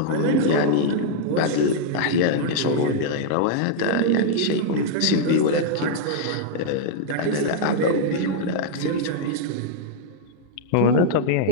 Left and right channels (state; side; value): different; both; correlation -0.01